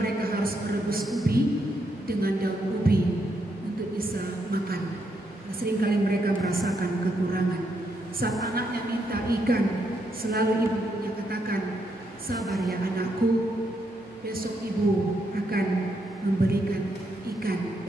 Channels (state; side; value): normal; both; correlation 0.78